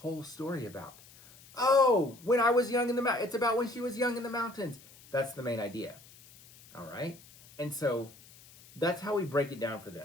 story about? Oh, when I was young in the mountains. It's about when she was young in the mountains. That's the main idea. All right? And so that's how we break it down for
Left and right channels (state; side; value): noise; left; hiss, 23 dB below the sound